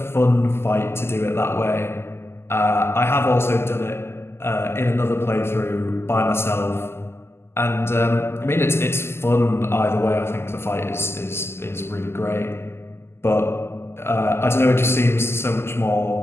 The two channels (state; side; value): late; right; 0.12 ms